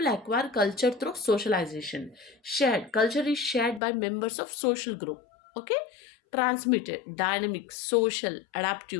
acquire culture through socialization. Shared culture is shared by members of social group. Okay, transmitted, dynamic, social,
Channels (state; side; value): drops out; right; at 3.8 s